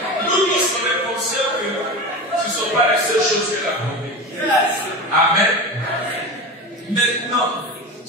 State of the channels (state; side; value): normal; both; correlation 0.26